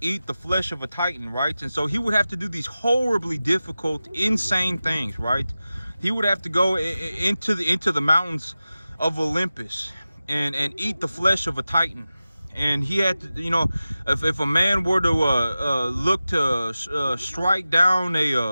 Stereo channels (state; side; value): inverted; both; correlation -0.95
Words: the flesh of a titan, right? And so he would have to do these horribly difficult, insane things, right? He would have to go into the mountains of Olympus and eat the flesh of a titan. And he had to, you know, if a man were to look to strike down